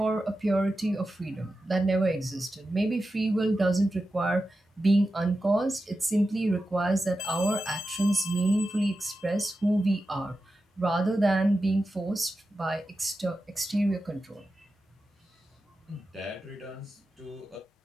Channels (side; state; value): both; normal; correlation 0.92